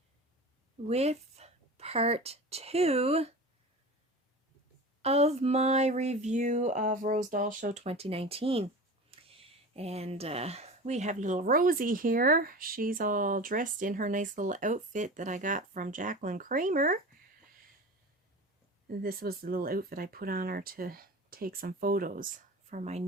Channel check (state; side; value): normal; both; correlation 0.33